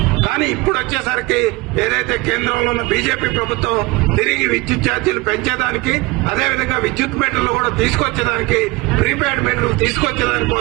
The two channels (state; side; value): quieter; left; 23.0 dB